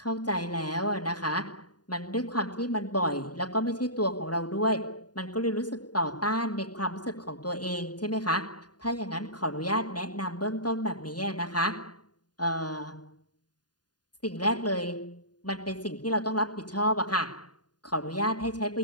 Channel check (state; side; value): late; right; 0.70 ms